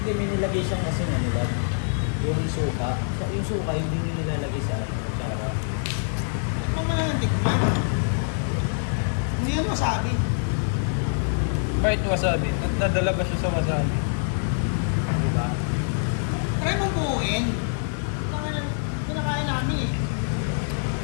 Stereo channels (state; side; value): silent; right; digital silence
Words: may nilagay siyang kasi nga nila. Yung suka. Yung suka, hindi nyo nilalagay sa atsara. Tikman mo na ng tikman. Hindi yan wasabi. Kahit wasabi, nadala ba siya sa wasabi? Diba? Try mong buuin. Pinakain namin eh.